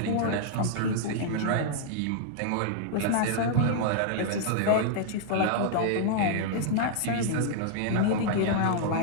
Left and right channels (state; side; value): different; both; correlation -0.01